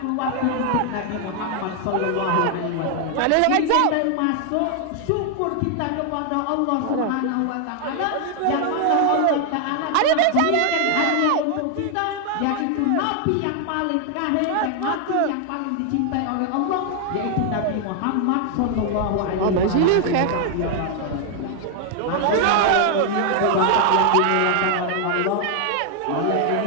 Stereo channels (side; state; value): both; different; correlation 0.00